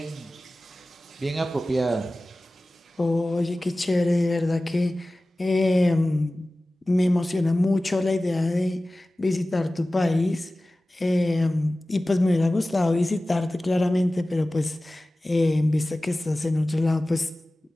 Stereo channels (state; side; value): normal; both; correlation 0.97